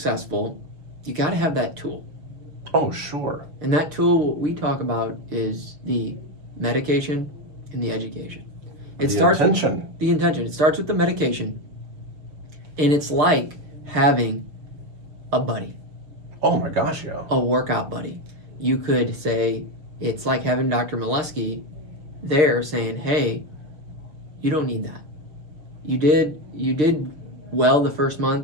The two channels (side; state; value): left; late; 6.6 ms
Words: you got to have that tool. Oh, sure. And that tool, what we talk about, is the medication and the education. It starts with the intention. It starts with the medication, and it's like having a buddy. Oh my gosh, yeah. A workout buddy. You could say it's like having Dr. Molesky there saying, hey, you don't need that. You did well the first